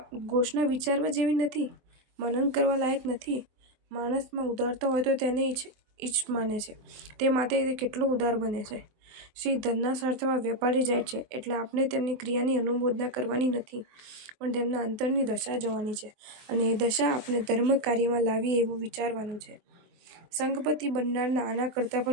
ઘોષણા વિચારવા જેવી નથી, મનન કરવા લાયક નથી. માણસમાં ઉદારતા હોય તો તેને ઈચ માને છે, તે માટે તે કેટલો ઉદાર બને છે. શ્રી ધનના સાર્થવા વેપારી જાય છે એટલે આપણે તેમની ક્રિયાની અનુમોદના કરવાની નથી, પણ તેમના અંતરની દશા જોવાની છે અને એ દશા આપણે ધર્મ કાર્યમાં લાવીએ એવું વિચારવાનું છે. સંઘપતિ બનનારને આના કરતાં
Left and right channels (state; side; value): late; left; 23 ms